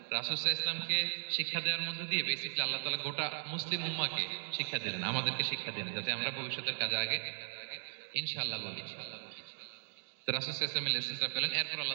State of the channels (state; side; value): silent; left; digital silence